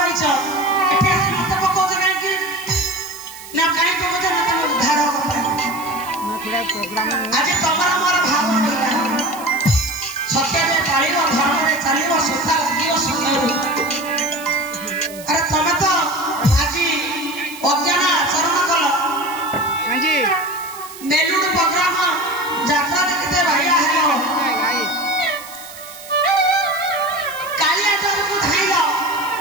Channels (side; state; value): right; noise; hiss, 16 dB below the sound